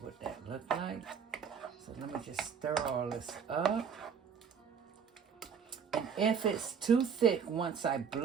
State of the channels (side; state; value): left; quieter; 6.8 dB